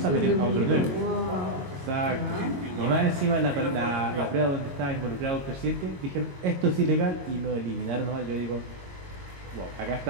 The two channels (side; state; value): left; late; 22 ms